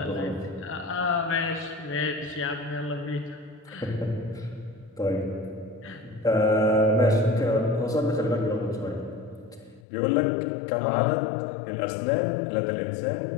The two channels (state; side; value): drops out; right; at 9.8 s